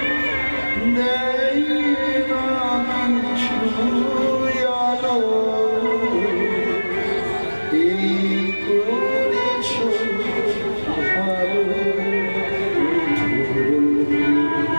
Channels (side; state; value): both; inverted; correlation -1.00